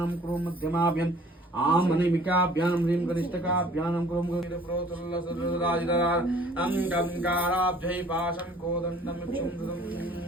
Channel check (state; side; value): normal; both; correlation 0.53